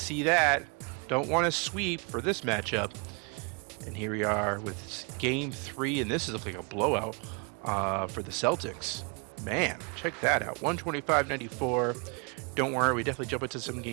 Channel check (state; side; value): quieter; left; 33.8 dB